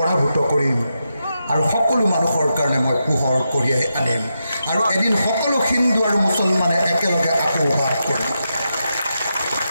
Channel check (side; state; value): both; inverted; correlation -0.86